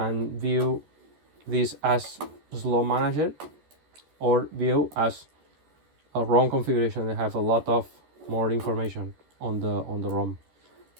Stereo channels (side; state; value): left; late; 13 ms